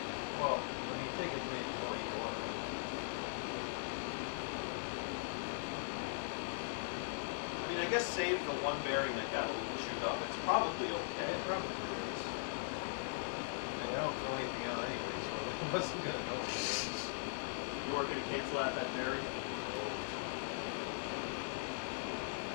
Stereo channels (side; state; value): right; silent; digital silence